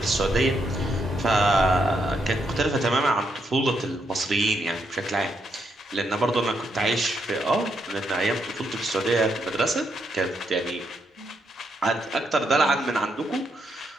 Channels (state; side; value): normal; both; correlation 0.78